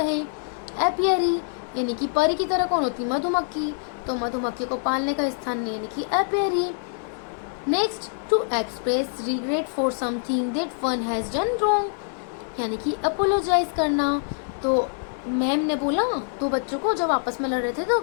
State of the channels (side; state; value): right; silent; 56 dB below the other